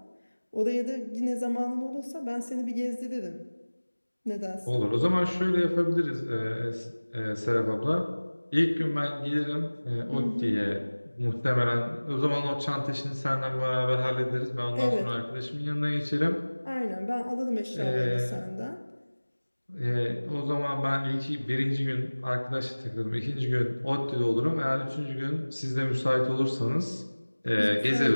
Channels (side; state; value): both; inverted; correlation -1.00